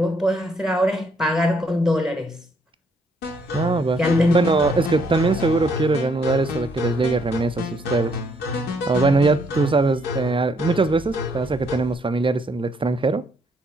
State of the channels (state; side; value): normal; both; correlation 0.69